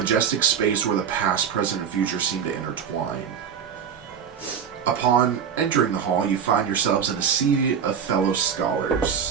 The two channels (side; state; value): left; quieter; 7.6 dB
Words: space where the past, present, and future seem to intertwine. Upon entering the hall, you find yourselves in a sea of fellow